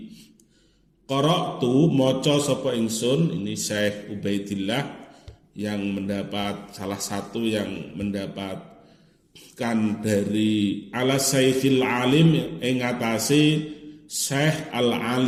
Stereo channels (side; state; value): both; identical; correlation 1.00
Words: Qara'tu maca sapa ingsun, ini Syekh Ubaidillah yang mendapat salah satu yang mendapatkan dari ala Syekhil Alim ing atase Syekh